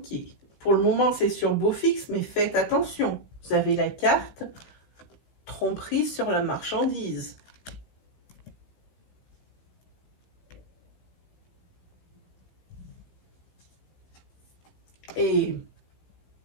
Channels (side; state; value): right; late; 15 ms